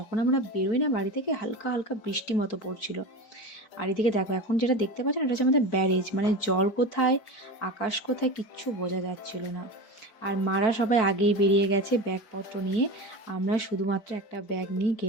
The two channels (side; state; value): right; late; 4.5 ms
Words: আমরা বেরোই না বাড়ি থেকে, হালকা হালকা বৃষ্টি মতো পড়ছিল। আর এদিকে দেখো এখন যেটা দেখতে পাচ্ছেন, এটা হচ্ছে আমাদের ব্যারেজ, মানে জল কোথায় আকাশ কোথায় কিচ্ছু বোঝা যাচ্ছিল না। আর মারা সবাই আগেই বেরিয়ে গেছে ব্যাগপত্র নিয়ে। আমরা শুধুমাত্র একটা ব্যাগ নিয়ে